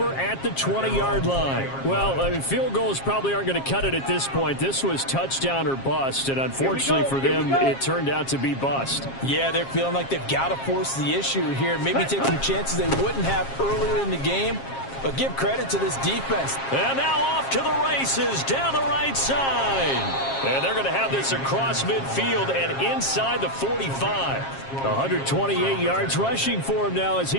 at the 20-yard line. Well, I mean, field goals probably aren't going to cut it at this point. This was touchdown or bust, and unfortunately for them, it turned out to be bust. Yeah, they're feeling like they've got to force the issue here. Maybe take some chances they wouldn't have earlier in the game. But give credit to this defense. And now off to the races down the right side. And they're going to have this across midfield and inside the 45. 128 yards rushing for him now as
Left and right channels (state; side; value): late; right; 7.4 ms